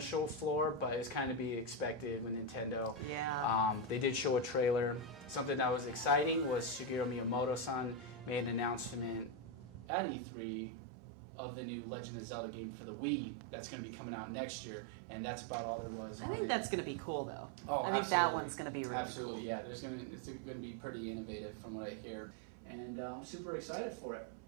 floor, but it's kind of to be expected with Nintendo. Yeah. They did show a trailer. Something that was exciting was Shigeru Miyamoto-san made an announcement at E3 of the new Legend of Zelda game for the Wii that's going to be coming out next year, and that's about all there was on it. I think that's going to be cool, though. Oh, I absolutely. That one's going to be really absolutely, yeah. It's going to be pretty innovative from what I hear, and I'm super excited for it.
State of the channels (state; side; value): drops out; left; at 9.9 s